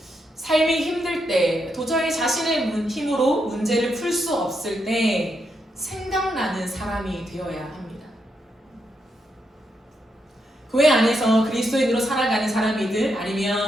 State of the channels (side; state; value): both; normal; correlation 0.81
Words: 삶이 힘들 때, 도저히 자신의 힘으로 문제를 풀 수 없을 때 생각나는 사람이 되어야 합니다. 교회 안에서 그리스도인으로 살아가는 사람이든